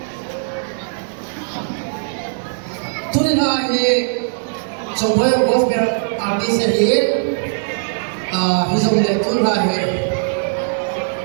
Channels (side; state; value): left; silent; digital silence